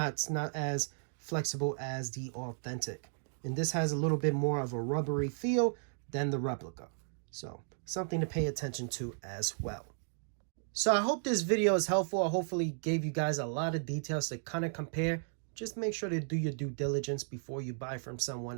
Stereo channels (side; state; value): left; silent; digital silence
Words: as flexible as the authentic. And this has a little bit more of a rubbery feel than the replica. So something to pay attention to as well. So I hope this video is helpful. I hopefully gave you guys a lot of details to kind of compare. Just make sure to do your due diligence before you buy from